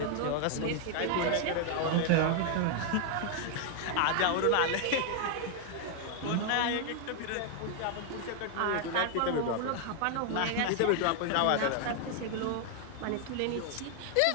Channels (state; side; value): different; both; correlation 0.00